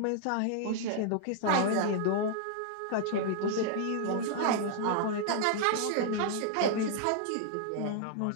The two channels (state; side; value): different; both; correlation -0.01